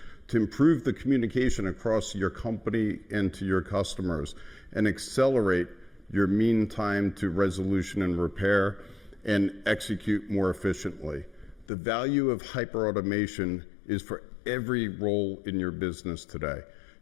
to improve the communication across your company and to your customers, and accelerate your mean time to resolution and repair, and execute more efficiently. The value of hyperautomation is for every role in your business today.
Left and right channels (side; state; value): right; drops out; at 11.7 s